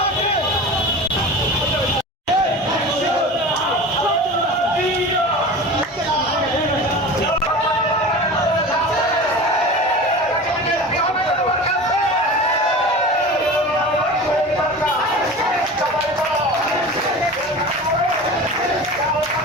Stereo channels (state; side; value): normal; both; correlation 0.34